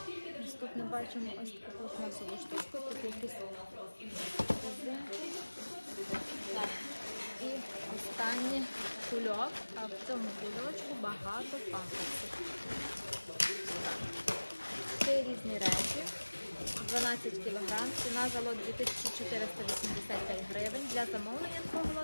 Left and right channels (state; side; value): inverted; both; correlation -1.00